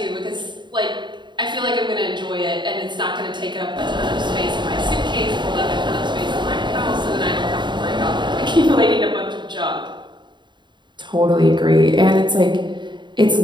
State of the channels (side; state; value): left; late; 0.22 ms